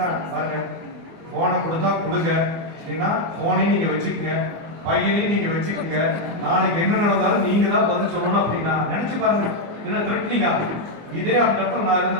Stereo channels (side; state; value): left; late; 24 ms